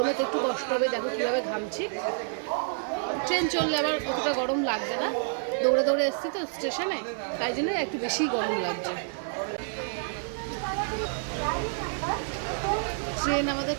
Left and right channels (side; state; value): left; silent; 58 dB below the other